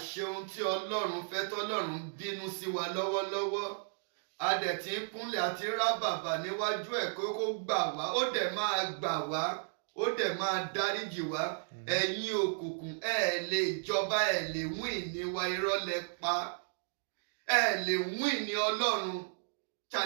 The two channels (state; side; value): silent; left; digital silence